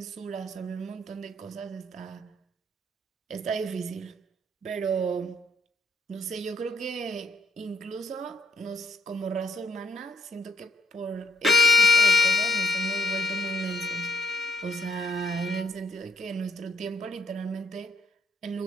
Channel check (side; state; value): both; normal; correlation 0.70